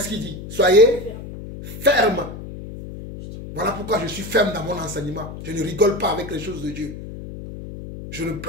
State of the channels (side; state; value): left; noise; hum, 11 dB below the sound